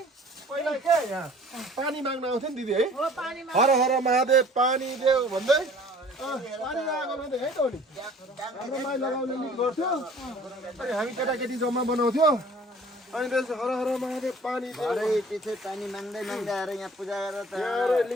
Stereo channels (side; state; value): both; normal; correlation 0.50